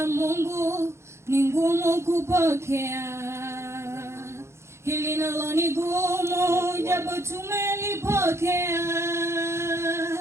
Mungu ni ngumu kupokea, hili nalo ni gumu japo tumelipokea,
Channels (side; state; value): left; late; 0.13 ms